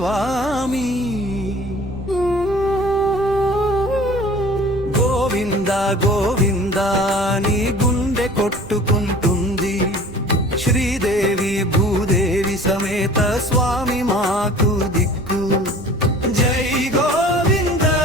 గోవింద గోవింద నీ గుండె కొట్టుకుంటుంది, శ్రీదేవి భూదేవి సమేత స్వామి మాకు దిక్కు. జై గోవింద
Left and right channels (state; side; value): noise; right; rumble, 18 dB below the sound